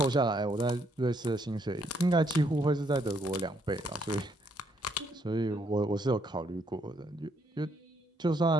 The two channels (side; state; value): both; normal; correlation 0.72